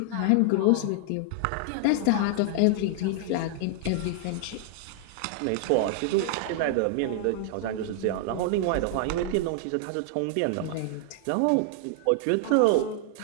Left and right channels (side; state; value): both; different; correlation -0.01